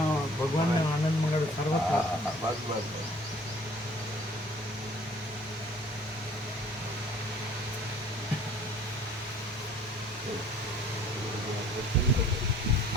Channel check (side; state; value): both; normal; correlation 0.53